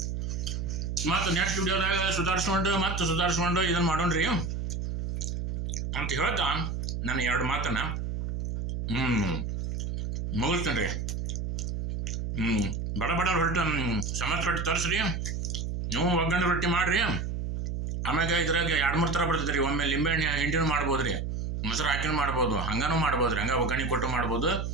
ಮತ್ತು ನೆಕ್ಸ್ಟ್ ವಿಡಿಯೋದಾಗ ಸುಧಾರಿಸ್ಕೊಂಡು ಇದನ್ನು ಮಾಡೋಣ್ರಿ ಅಂತ ಹೇಳ್ತಾ ನಾನು 2 ಮಾತನ್ನ ಮುಗಿಸ್ತೇನೆ ರೀ. ಬಡ ರೊಟ್ಟಿ ಸಮತ್ ರೊಟ್ಟಿ ತರಿಸ್ರಿ, ನೀವು ಒಗ್ಗರಣೆ ರೊಟ್ಟಿ ಮಾಡಿರಿ. ಆಮ್ಯಾಗ ಇದ್ರಾಗ 2-3 ಥರ ಬರ್ತದೆ ರೀ. ಒಮ್ಮೆ ಲಿಂಬೆಹಣ್ಣು ಹಿಂಡಿನೂ ಮಾಡ್ಬೋದು ರೀ, ಮೊಸರು ಹಾಕಿನೂ ಮಾಡ್ಬೋದು, ಹಂಗನೂ ಮಾಡ್ಬೋದು ರೀ, ಹಂಗೆ ಒಗ್ಗರಣೆ ಕೊಟ್ಟು ಮಾಡ್ಬೋದು.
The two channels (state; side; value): noise; right; hum, 3 dB below the sound